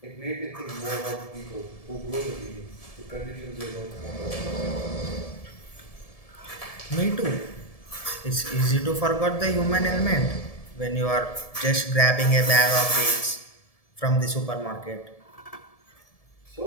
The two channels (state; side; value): late; right; 1.7 ms